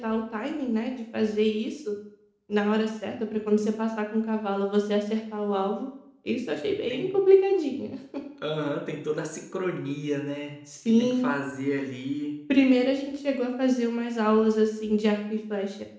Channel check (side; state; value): both; identical; correlation 1.00